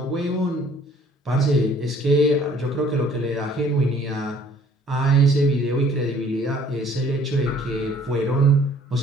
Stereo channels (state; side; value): normal; both; correlation 0.57